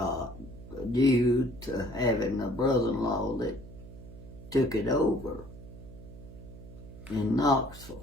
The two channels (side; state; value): right; noise; hum, 16 dB below the sound